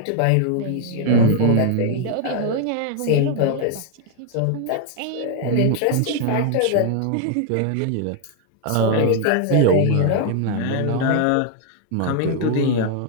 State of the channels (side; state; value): both; different; correlation 0.00